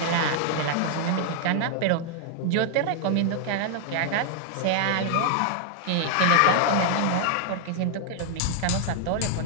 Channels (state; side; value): different; both; correlation 0.00